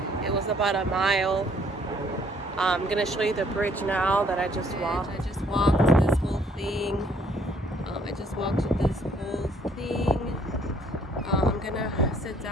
It was about a mile. I'm gonna show you the bridge now that I just walked. I just walked this whole thing. I'm gonna sit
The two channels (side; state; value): both; normal; correlation 0.63